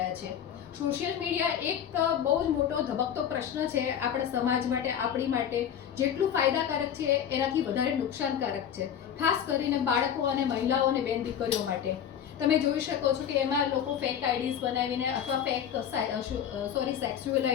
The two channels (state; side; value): quieter; right; 9.1 dB